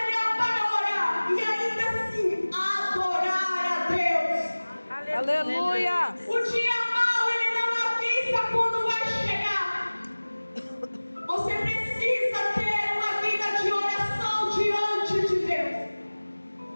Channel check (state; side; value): inverted; both; correlation -1.00